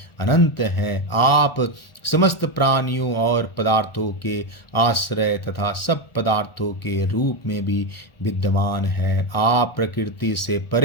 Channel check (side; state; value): right; late; 1.4 ms